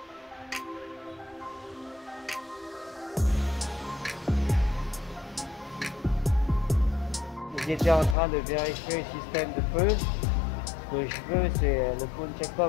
J'étais en train de vérifier le système de feu. Ce que je veux, c'est le full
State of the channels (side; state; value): right; drops out; at 8.2 s